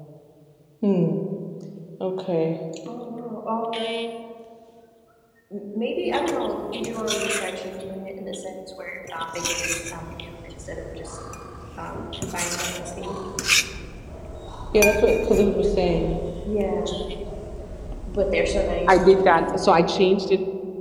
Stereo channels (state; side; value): identical; both; correlation 1.00